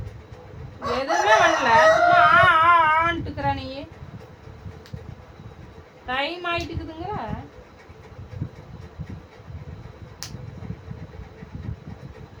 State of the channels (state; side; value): identical; both; correlation 1.00